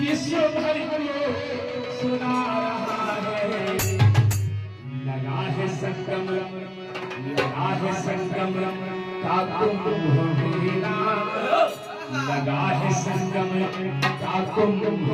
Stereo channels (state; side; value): identical; both; correlation 1.00